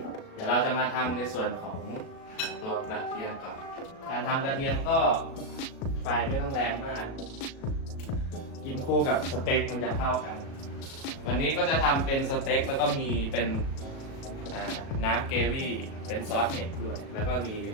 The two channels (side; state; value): right; late; 37 ms